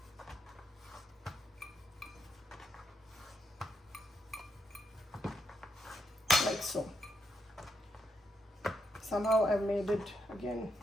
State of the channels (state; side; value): normal; both; correlation 0.79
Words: Like so. Somehow I've made it again